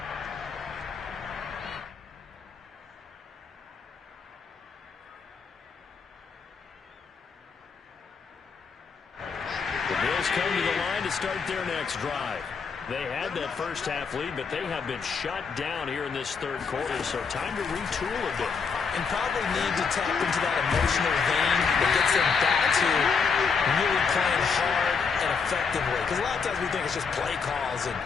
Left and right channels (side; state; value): right; quieter; 5.6 dB